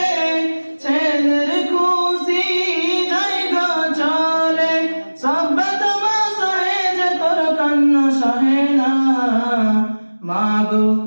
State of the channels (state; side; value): inverted; both; correlation -1.00